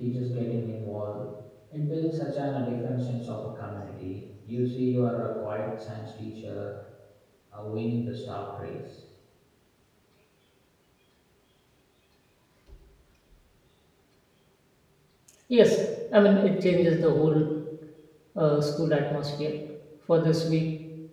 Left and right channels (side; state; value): both; identical; correlation 1.00